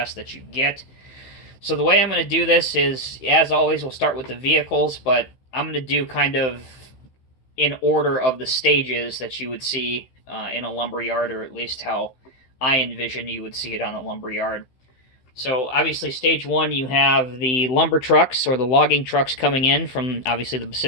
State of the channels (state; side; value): late; right; 15 ms